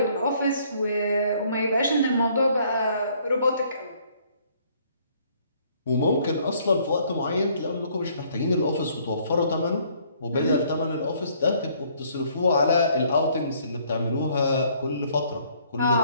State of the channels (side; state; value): both; inverted; correlation -0.63